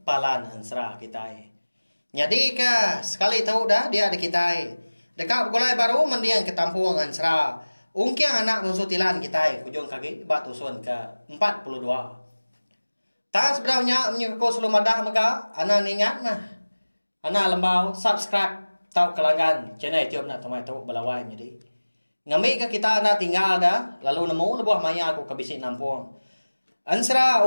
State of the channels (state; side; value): inverted; both; correlation -1.00